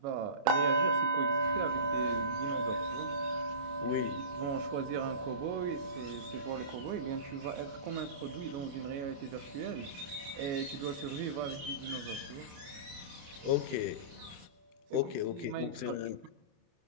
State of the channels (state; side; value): late; left; 28 ms